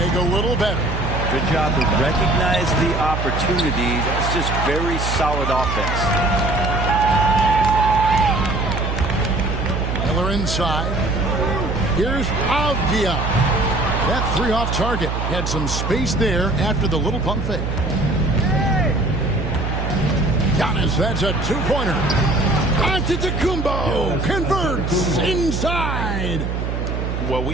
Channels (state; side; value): noise; right; hum, 2 dB below the sound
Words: a little better. Good job to recognize the opportunity. That's just very solid offense. Miller inside. Here's Avdia. That 3 off target had some space there after the little pump fake. Giannis, that's a two-pointer. Antetokounmpo converts inside. Well,